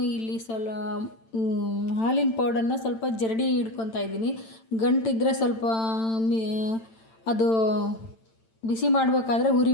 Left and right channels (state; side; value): late; right; 8.9 ms